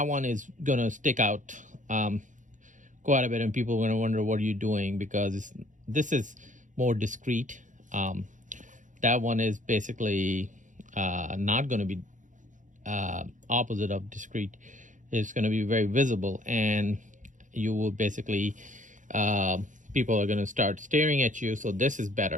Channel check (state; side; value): late; left; 0.37 ms